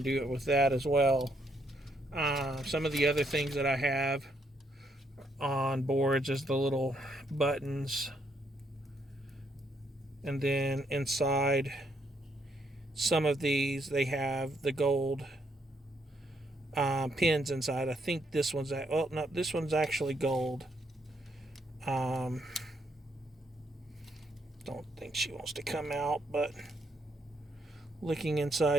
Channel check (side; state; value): both; normal; correlation 0.74